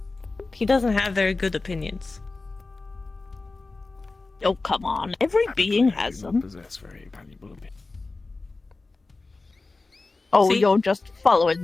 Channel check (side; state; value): right; quieter; 3.6 dB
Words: He doesn't have very good opinions. Oh, come on. Every being I has do not them. possess very valuable opinions. Oh, See? you're just following